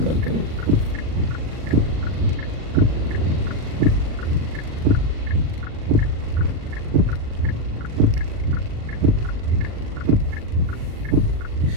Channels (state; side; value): late; left; 39 ms